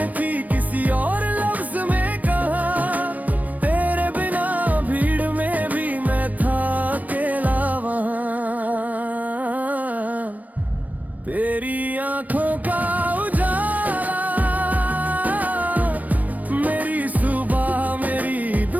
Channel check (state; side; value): late; left; 0.075 ms